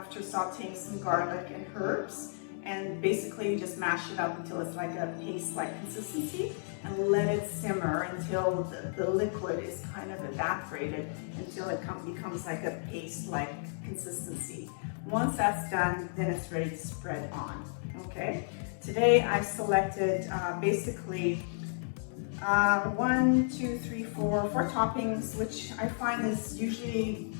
sauteing some garlic and herbs. And basically you just mash it up until it's like a paste-like consistency, and let it simmer until the liquid is kind of evaporated until it becomes like a paste-like consistency. Once that's done, then it's ready to spread on, okay? Today I've selected basically 4 toppings, which I find is usually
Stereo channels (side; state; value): right; silent; digital silence